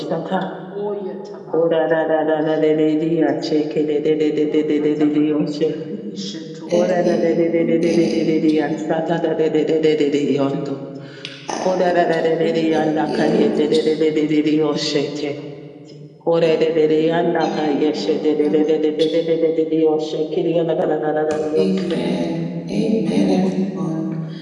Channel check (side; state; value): both; identical; correlation 1.00